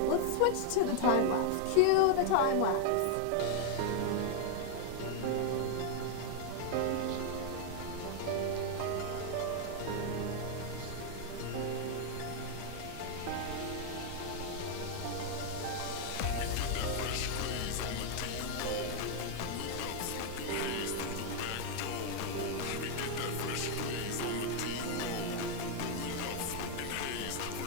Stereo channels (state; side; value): different; both; correlation 0.00